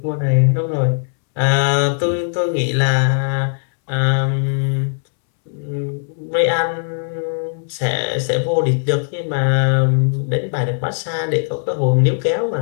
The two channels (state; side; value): silent; right; 67 dB below the other